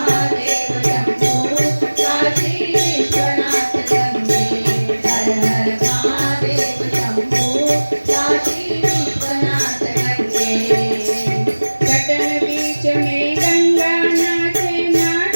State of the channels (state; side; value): inverted; both; correlation -1.00